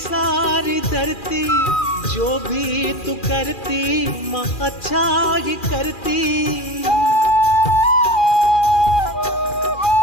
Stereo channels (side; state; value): right; late; 2.4 ms